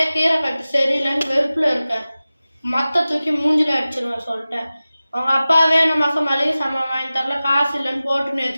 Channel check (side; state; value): both; inverted; correlation -0.96